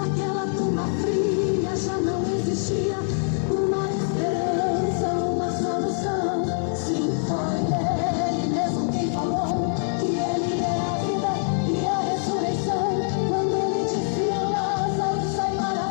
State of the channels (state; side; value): silent; right; digital silence